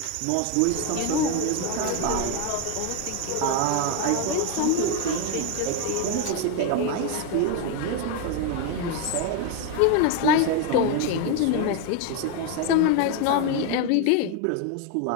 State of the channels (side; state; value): both; different; correlation 0.01